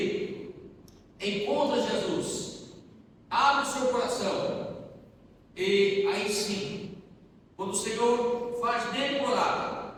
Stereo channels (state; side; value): identical; both; correlation 1.00